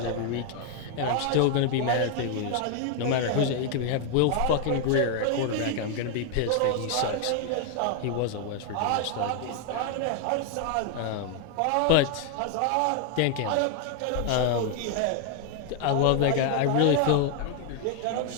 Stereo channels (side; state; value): both; different; correlation 0.00